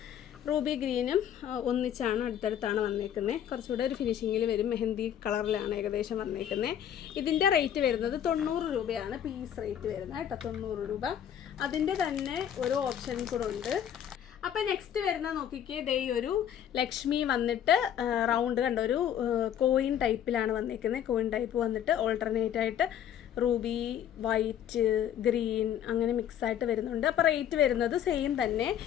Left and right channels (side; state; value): right; quieter; 9.9 dB